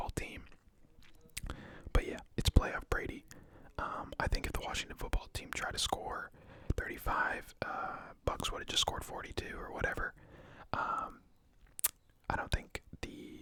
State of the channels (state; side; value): identical; both; correlation 1.00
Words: team. But yeah, it's playoff Brady. I think if the Washington football team tried to score 35, Bucks would have just scored 42 or whatever. I don't think